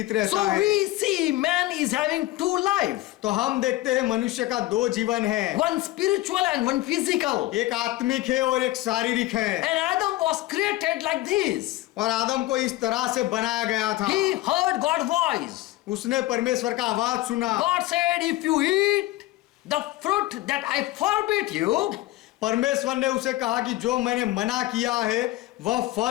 रहता So है। we see man is having 2 life, तो हम देखते हैं मनुष्य का 2 जीवन है, one spiritual and one physical. एक आत्मिक है और एक शारीरिक है। And Adam was created like this. और आदम को इस तरह से बनाया गया था। He heard God's voice. उसने परमेश्वर का आवाज सुना। God said, if you eat the fruit that I forbid you, परमेश्वर ने उसे कहा कि जो मैंने मना किया है वह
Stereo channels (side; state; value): right; quieter; 17.4 dB